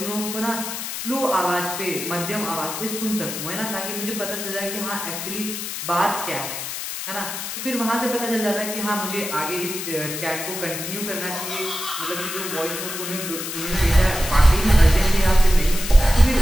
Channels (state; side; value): noise; left; hiss, 6 dB below the sound